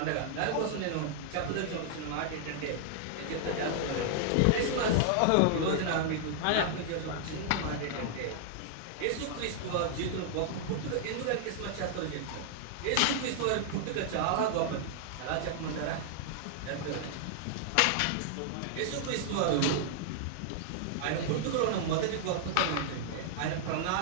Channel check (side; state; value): both; different; correlation -0.01